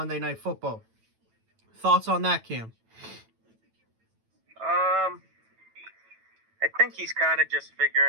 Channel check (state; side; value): late; left; 9.1 ms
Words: Night Football. Thoughts on that, Cam? I think he's kind of just